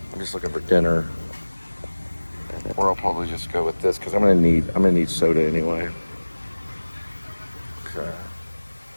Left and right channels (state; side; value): inverted; both; correlation -1.00